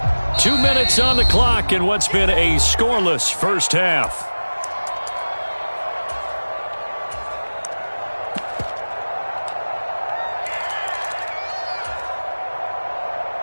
2 minutes on the clock in what's been a scoreless first half.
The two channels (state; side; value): inverted; both; correlation -1.00